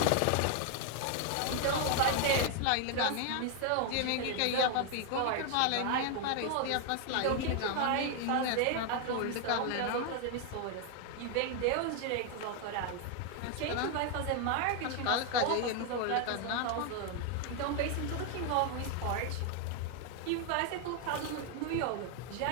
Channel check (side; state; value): both; different; correlation 0.00